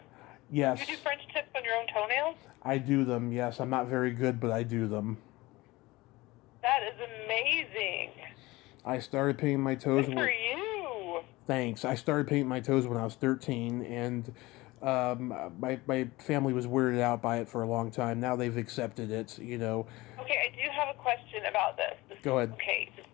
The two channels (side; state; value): right; quieter; 20.5 dB